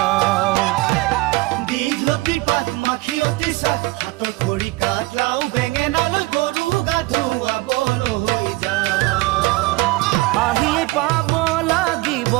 দীঘলতিৰ পাত মাখিয়তিৰ চাট হাতৰ খৰি কাঠ লাও বেঙেনালৈ গৰু গা ধুৱাবলৈ যাওঁ আহিয়ে পাব লাগিব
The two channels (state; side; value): quieter; left; 21.4 dB